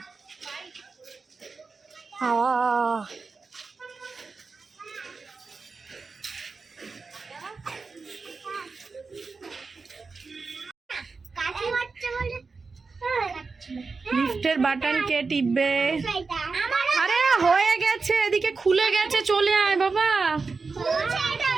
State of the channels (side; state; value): left; quieter; 4.4 dB